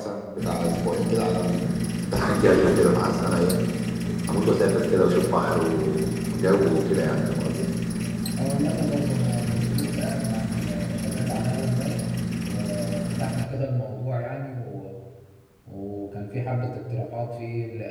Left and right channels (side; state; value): both; identical; correlation 1.00